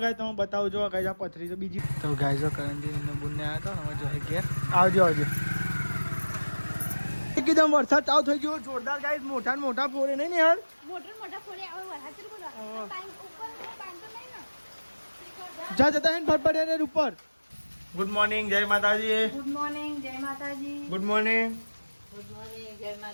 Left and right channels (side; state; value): both; inverted; correlation -1.00